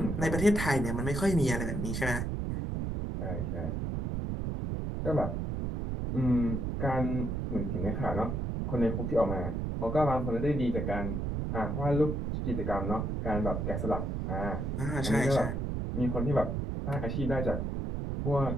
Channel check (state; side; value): noise; right; rumble, 2 dB below the sound